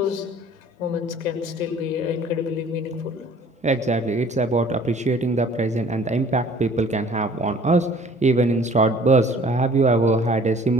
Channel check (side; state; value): both; normal; correlation 0.52